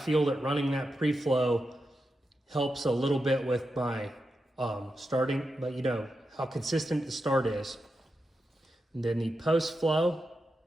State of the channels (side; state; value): both; normal; correlation 0.88